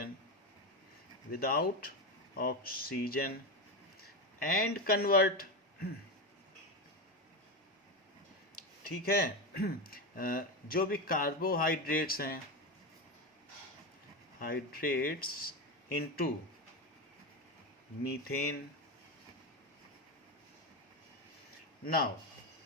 without oxygen and convert, ठीक है, जो भी कार्बोहाइड्रेट्स हैं, hydrates into methane. Now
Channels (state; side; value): normal; both; correlation 0.15